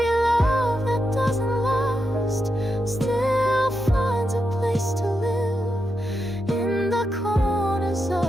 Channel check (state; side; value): normal; both; correlation 0.85